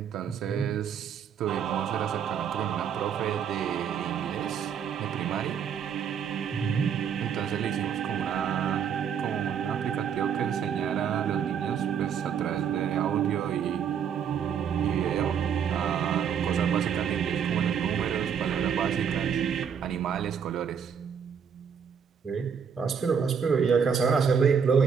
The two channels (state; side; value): quieter; left; 7.4 dB